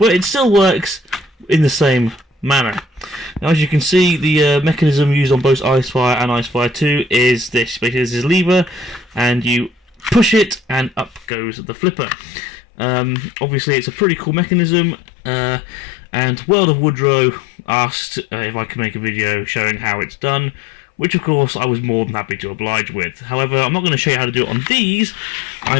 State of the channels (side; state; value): right; drops out; at 11.2 s